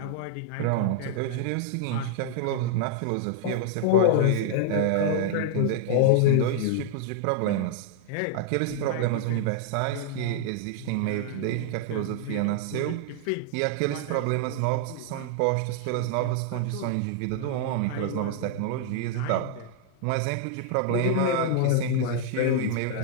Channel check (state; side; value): different; both; correlation 0.00